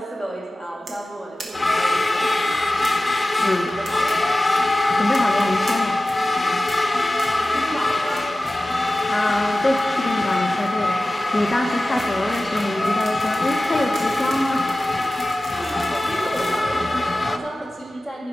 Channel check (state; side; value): normal; both; correlation 0.96